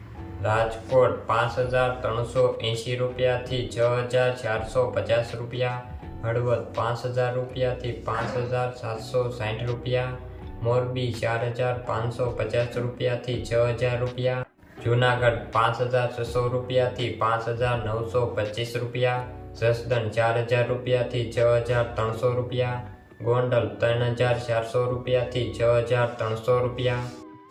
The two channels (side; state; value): both; identical; correlation 1.00